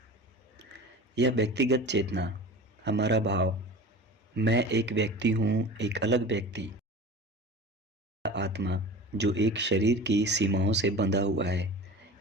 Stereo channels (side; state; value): both; normal; correlation 0.36